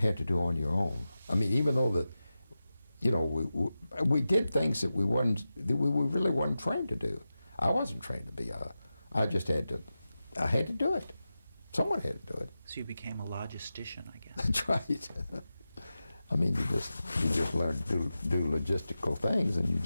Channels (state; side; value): inverted; both; correlation -0.93